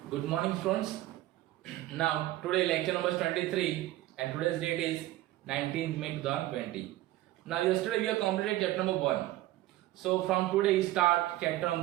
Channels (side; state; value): left; quieter; 16.1 dB